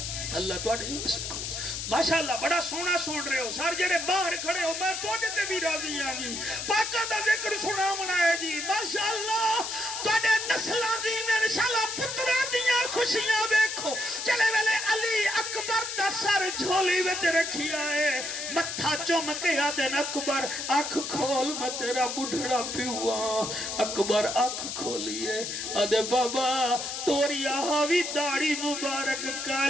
اللہ تو آنے ماشاءاللہ بڑا سونا سن رہے ہو سار جڑے باہر کھڑے ہو میں تو آنے تے بھی راضی ہاں جی پاکہ دا ذکر سنا منائے جی ماشاءاللہ تو آنے نسلہ جی میں انشاءاللہ پترہ دیاں خوشیاں دیکھو چلے ویلے علی اکبر دا سر جھولی وچ رکھی آئے متھا چومکے آدھن اکبر آنکھ کھول میں تیرا بڑھڑا پیوا اکبر آنکھ کھولیے آدھے بابا توریہ ہاوی داڑی مبارک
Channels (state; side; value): noise; left; hiss, 5 dB below the sound